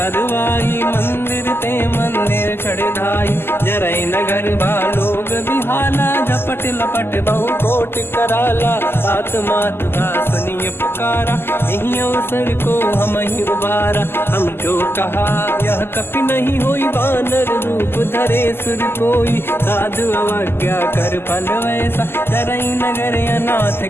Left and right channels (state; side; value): late; right; 0.11 ms